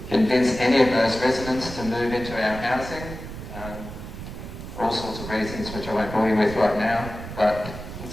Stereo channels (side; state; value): right; noise; rumble, 10 dB below the sound